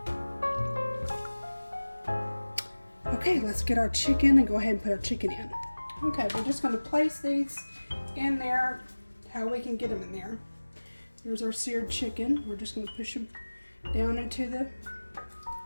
Okay, let's get our chicken and go ahead and put our chicken in. Okay, we're just going to place these in there how we can get them in there. Here's our seared chicken. We're just going to push them down into the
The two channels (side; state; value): both; inverted; correlation -1.00